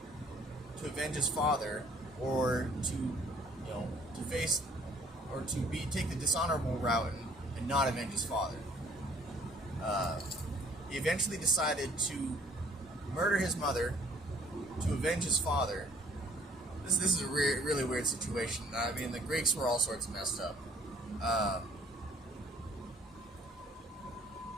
to avenge his father, or to face, or to take the dishonorable route and not avenge his father. He eventually decided to murder his mother to avenge his father. This is a really weird situation. I mean, the Greeks were all sorts of messed up.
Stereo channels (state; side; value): normal; both; correlation 0.57